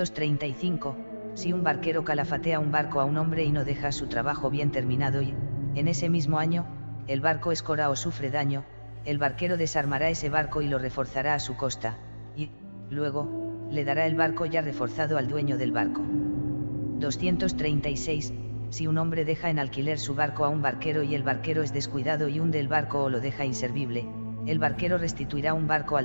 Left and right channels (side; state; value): both; inverted; correlation -1.00